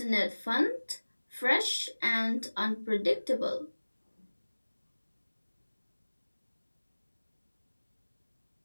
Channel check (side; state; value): both; inverted; correlation -1.00